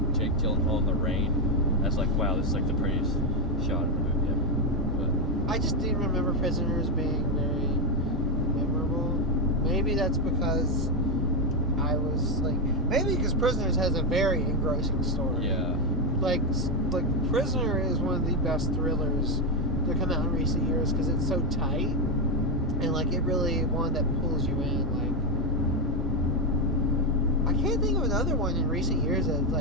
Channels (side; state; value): both; normal; correlation 0.06